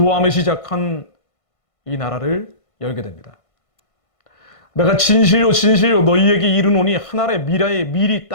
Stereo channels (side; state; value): right; late; 1.5 ms